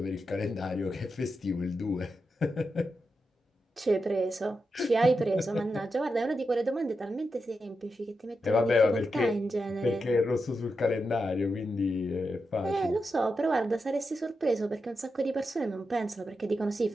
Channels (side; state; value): both; normal; correlation 0.87